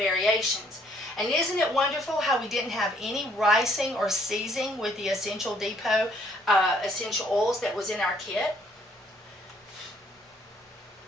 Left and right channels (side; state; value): both; normal; correlation 0.64